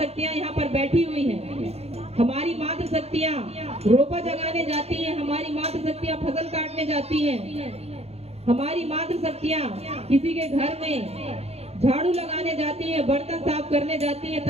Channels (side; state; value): left; late; 0.30 ms